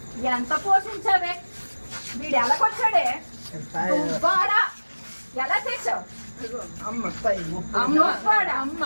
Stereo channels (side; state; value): both; inverted; correlation -1.00